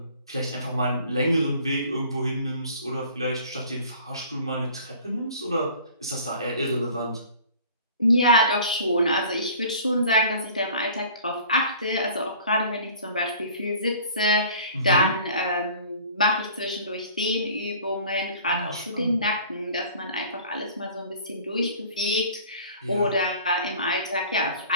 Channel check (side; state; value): both; inverted; correlation -0.48